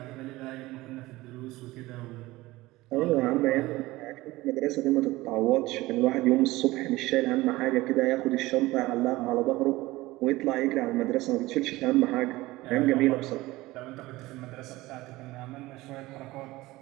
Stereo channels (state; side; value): quieter; left; 19.1 dB